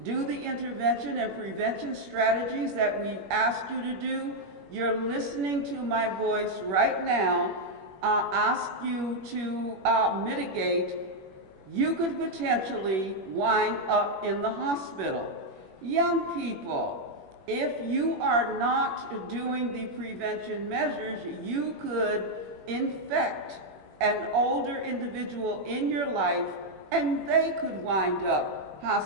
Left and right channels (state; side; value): late; left; 21 ms